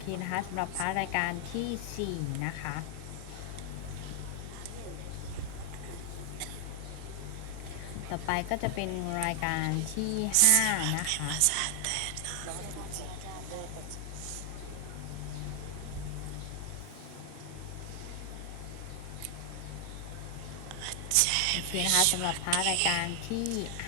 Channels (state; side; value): different; both; correlation 0.00